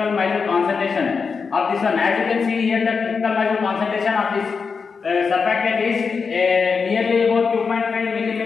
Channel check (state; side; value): quieter; right; 5.3 dB